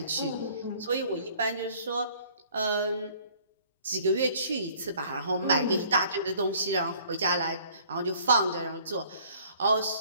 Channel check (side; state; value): both; inverted; correlation -0.56